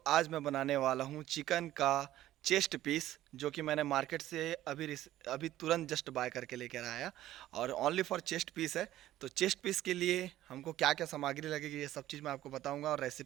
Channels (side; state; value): left; quieter; 14.0 dB